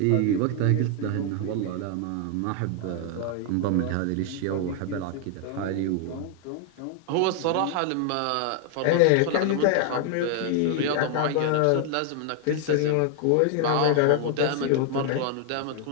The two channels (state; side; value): different; both; correlation 0.00